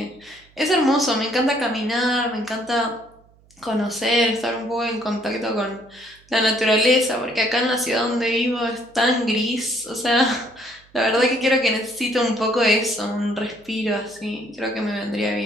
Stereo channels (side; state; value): right; noise; hum, 30 dB below the sound